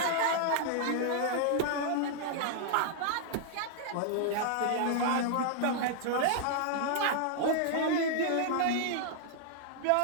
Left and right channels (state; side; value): different; both; correlation -0.01